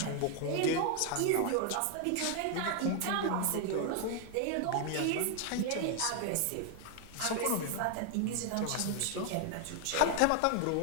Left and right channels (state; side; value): different; both; correlation 0.01